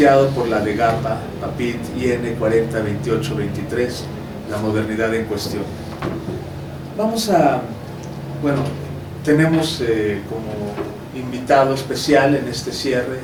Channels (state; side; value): identical; both; correlation 1.00